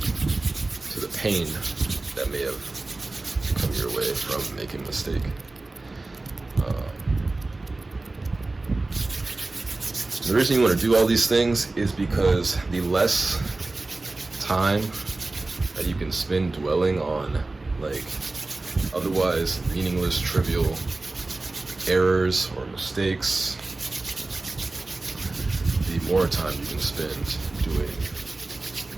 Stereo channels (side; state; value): left; quieter; 3.2 dB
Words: to the pain that may have come your way from making a mistake. The reason you want to do all these things is because the less time that you can spend dwelling on like otherwise meaningless, trivial errors or mistakes, the more time you can spend doing